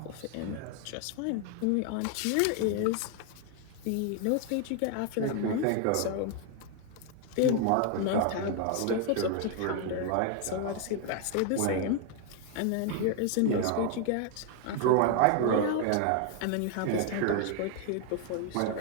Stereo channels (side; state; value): both; different; correlation 0.01